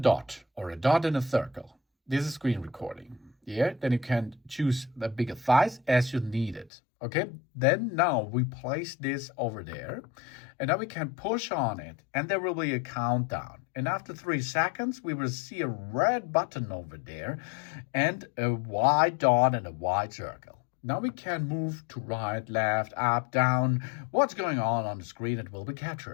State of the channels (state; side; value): drops out; right; at 6.7 s